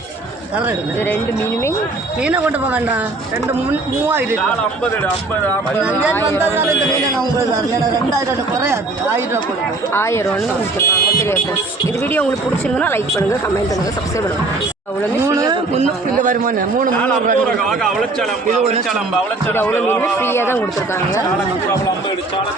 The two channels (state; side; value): quieter; left; 3.2 dB